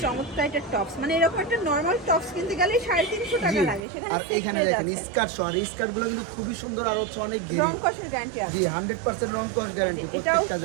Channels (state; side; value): drops out; left; at 3.8 s